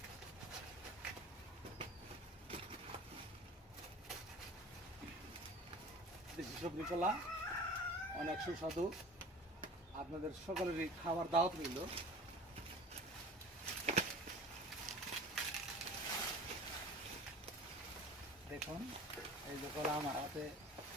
দেশি সবজি কলা অনেক সুস্বাদু, আপনাদের সকলেরই খাবার দাওয়াত রইল। দেখুন এই যে কলা আমার হাতে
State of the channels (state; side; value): normal; both; correlation 0.40